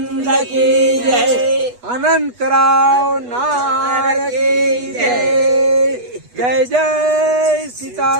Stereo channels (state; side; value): late; left; 8.2 ms